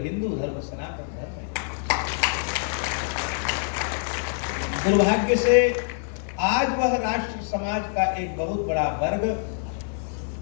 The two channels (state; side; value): silent; right; digital silence